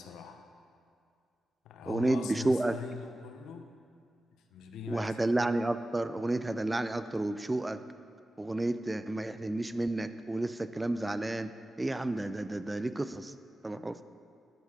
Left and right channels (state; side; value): normal; both; correlation 0.96